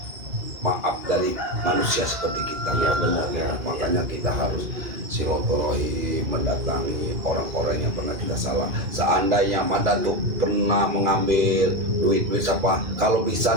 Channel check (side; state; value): left; late; 2.5 ms